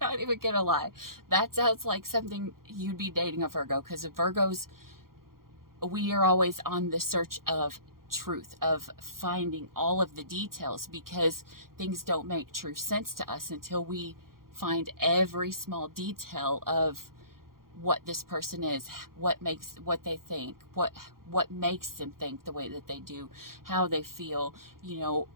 even gonna lie. That sounds like something you'd be dating a Virgo, because Virgos, we are always on the search of truth, of finding all of the details, because things don't make true sense to us until we find every small detail of what this person is, what they think, what makes them think the way that they do, how they feel,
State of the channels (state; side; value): late; left; 0.92 ms